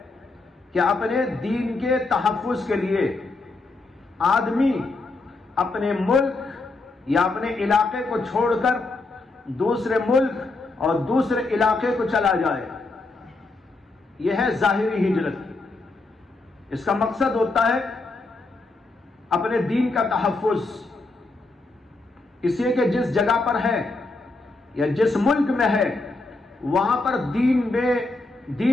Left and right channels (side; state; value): right; quieter; 3.3 dB